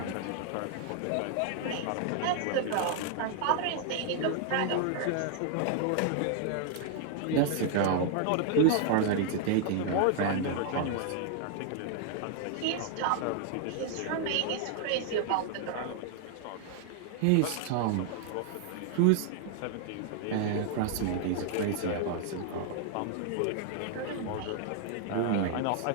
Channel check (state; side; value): different; both; correlation 0.00